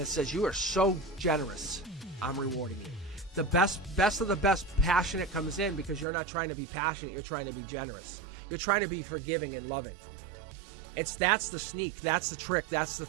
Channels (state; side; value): drops out; left; at 6.1 s